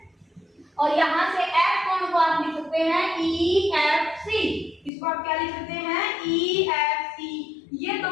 और यहाँ से F कोण को आप लिख सकते हैं EFC, इसको आप क्या लिख सकते हैं EFC। ये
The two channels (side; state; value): right; drops out; at 4.9 s